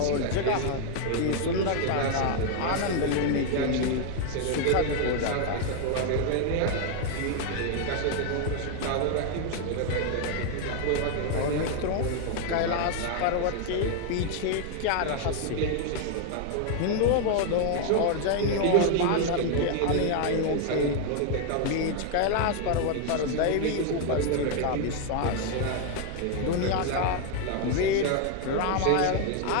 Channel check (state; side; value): different; both; correlation 0.00